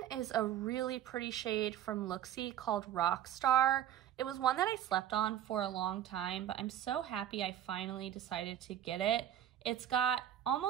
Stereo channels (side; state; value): left; quieter; 11.2 dB